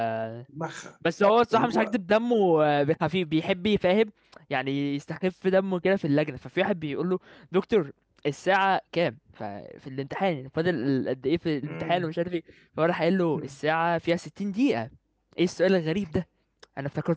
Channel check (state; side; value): identical; both; correlation 1.00